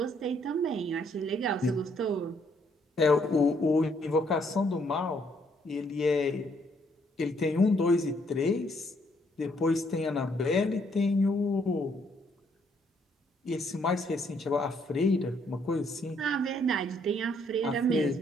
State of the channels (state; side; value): normal; both; correlation 0.70